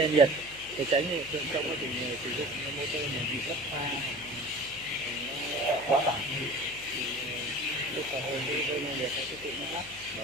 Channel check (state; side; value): noise; left; hum, 20 dB below the sound